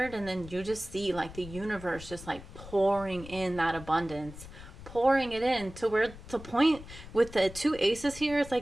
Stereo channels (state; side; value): noise; left; rumble, 15 dB below the sound